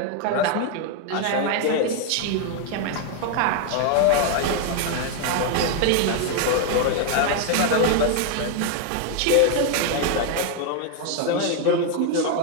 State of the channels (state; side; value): different; both; correlation 0.00